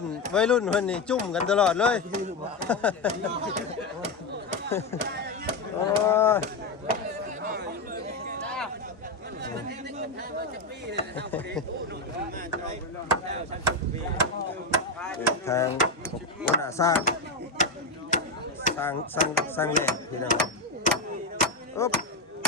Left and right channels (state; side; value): quieter; right; 3.2 dB